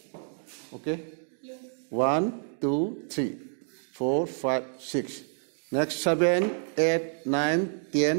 Okay? Yes. 1, 2, 3, 4, 5, 6. Next 7, 8, 9,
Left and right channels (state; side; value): silent; left; digital silence